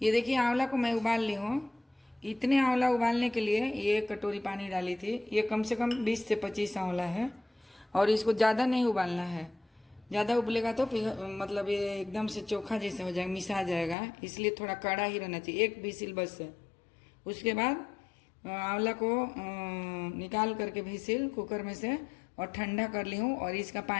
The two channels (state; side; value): drops out; right; at 14.0 s